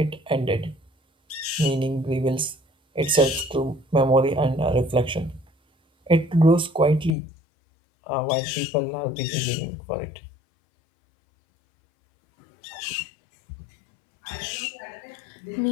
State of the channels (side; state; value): right; drops out; at 7.2 s